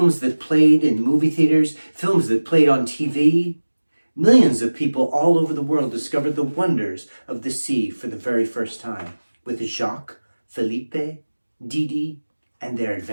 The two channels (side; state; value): both; inverted; correlation -1.00